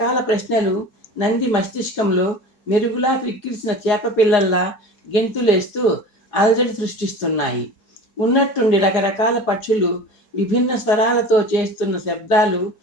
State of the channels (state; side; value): late; right; 4.8 ms